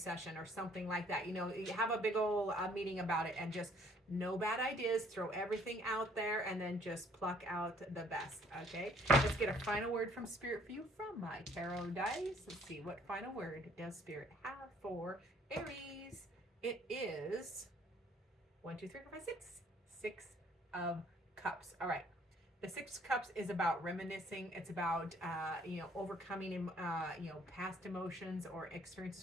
or something like that. You have a big old meeting about it, and just no bad ideas. Throw everything out there, and then just pluck out the best. Okay. Let's get a final word from Spirit for you from my tarot dice. Let's see, what final word does Spirit have for Aries? It is 1, 2, 3, 4, 5, 6. 6 of Cups. All right. The 6 of Cups is about reminiscing. It's about, overcoming, past emotions or experiences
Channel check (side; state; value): both; normal; correlation 0.61